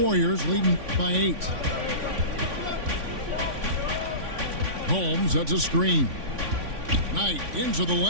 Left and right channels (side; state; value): left; late; 3.5 ms